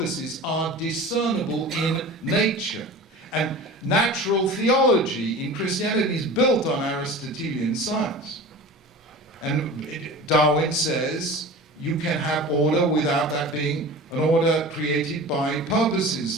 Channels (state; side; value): normal; both; correlation 0.36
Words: are discernible in nature. And natural theology in Christianity is built on Aristotelian science. And Darwin says you can have order without that being an order created by